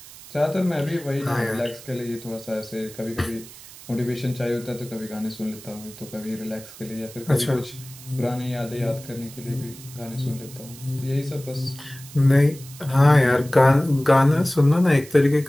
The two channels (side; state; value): right; noise; hiss, 18 dB below the sound